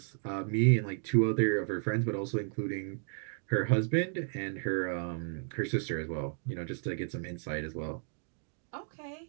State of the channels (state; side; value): silent; left; 56 dB below the other